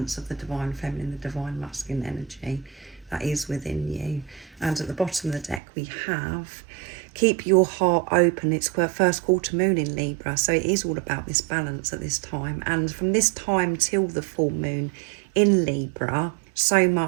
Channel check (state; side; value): drops out; left; at 5.6 s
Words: of the divine feminine, the divine masculine energy that is within you. And at the bottom of the deck we have keep your heart open. It's first quarter moon in Libra, so it is all about this balance at this time. And from this time till the full moon in Libra, so